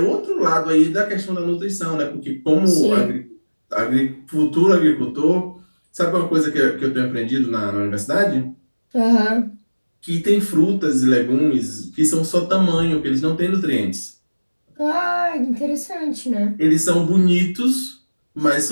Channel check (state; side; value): inverted; both; correlation -1.00